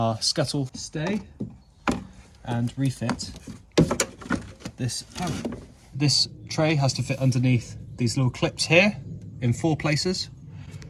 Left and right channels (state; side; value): identical; both; correlation 1.00